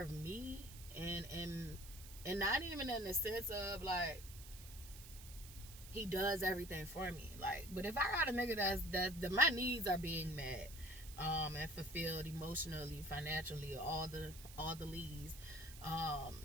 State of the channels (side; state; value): right; noise; hiss, 15 dB below the sound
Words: of me and not even in the sense of like he does everything for me, like, but if I got a nigga that my needs are being met and fulfilled emotionally, financially, all the leads,